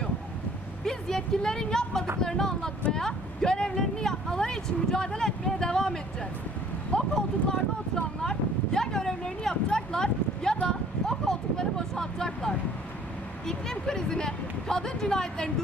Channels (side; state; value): both; normal; correlation 0.55